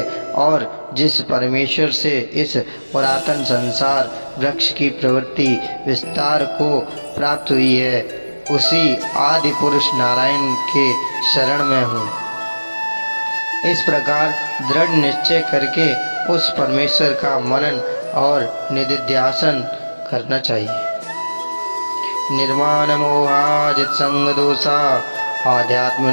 और जिस परमेश्वर से इस पुरातन संसार वृक्ष की प्रवृत्ति विस्तार को प्राप्त हुई है उसी आदि पुरुष नारायण के शरण में हूँ। इस प्रकार दृढ़ निश्चय करके उस परमेश्वर का मनन और निधिध्यासन करना चाहिए। निर्माण मोहाजित संग दोषा आध्यात्म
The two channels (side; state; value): both; inverted; correlation -1.00